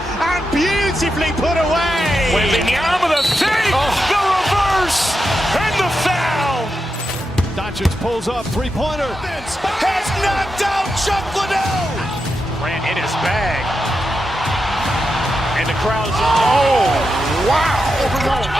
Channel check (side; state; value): both; normal; correlation 0.87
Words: beautifully put away. Wembanyama the save, the reverse, and the foul. Doncic pulls up, three-pointer. Has knocked out Chuck Liddell. Ran in his bag. And the crowd's